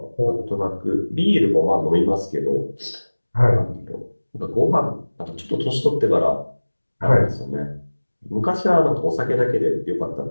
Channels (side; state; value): both; inverted; correlation -1.00